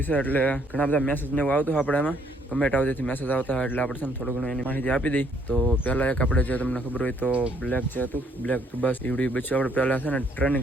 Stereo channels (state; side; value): normal; both; correlation 0.67